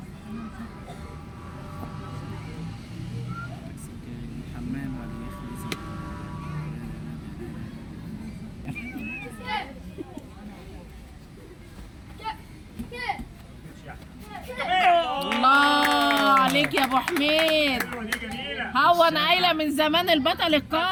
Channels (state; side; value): identical; both; correlation 1.00